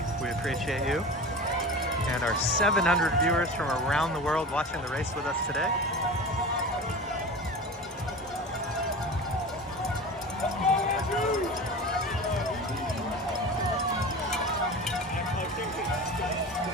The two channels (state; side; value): normal; both; correlation 0.32